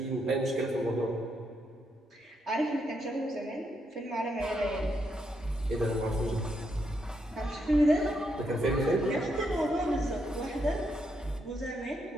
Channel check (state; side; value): normal; both; correlation 0.79